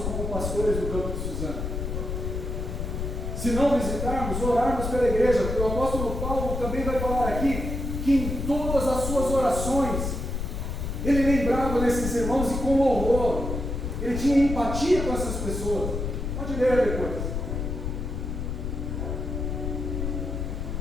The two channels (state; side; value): noise; left; rumble, 3 dB below the sound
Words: como pastores do campo de Suzano, se não visitarmos, orarmos pela igreja, porque o apóstolo Paulo também vai falar aqui, que em todas as suas orações, ele lembrava desses irmãos e com louvor, ele tinha empatia com essas pessoas. Pode ler depois.